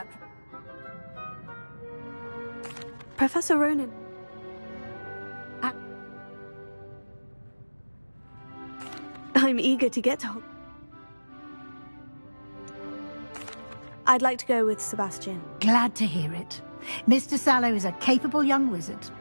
Professor Ronan. I'm eager to get to... I'd like to go with Sebastian. Glad to hear it. Mr. Sallow is a capable young wizard,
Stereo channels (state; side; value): inverted; both; correlation -1.00